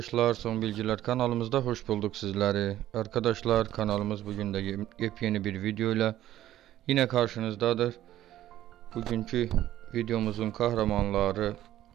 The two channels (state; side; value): quieter; left; 13.2 dB